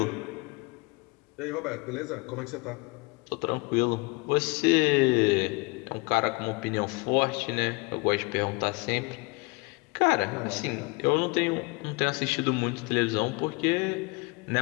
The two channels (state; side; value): quieter; right; 27.3 dB